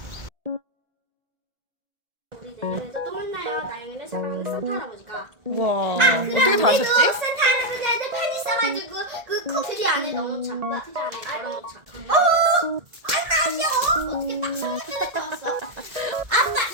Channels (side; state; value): left; late; 1.8 ms